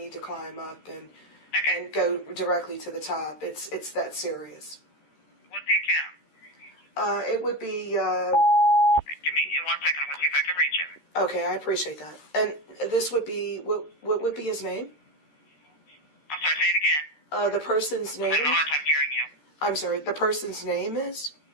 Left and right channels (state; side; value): late; right; 13 ms